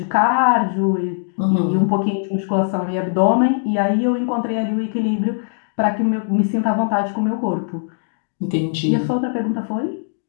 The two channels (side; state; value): right; silent; digital silence